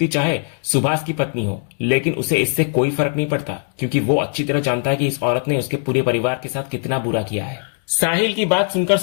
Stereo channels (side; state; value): right; silent; digital silence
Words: चाहे सुभाष की पत्नी हो, लेकिन उसे इससे कोई फर्क नहीं पड़ता, क्योंकि वो अच्छी तरह जानता है कि इस औरत ने उसके पूरे परिवार के साथ कितना बुरा किया है। साहिल की बात सुनकर